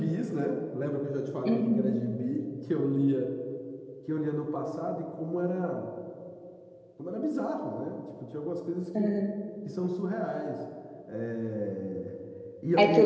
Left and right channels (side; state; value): both; identical; correlation 1.00